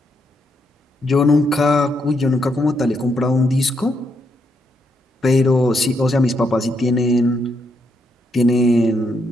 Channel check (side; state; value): both; normal; correlation 0.78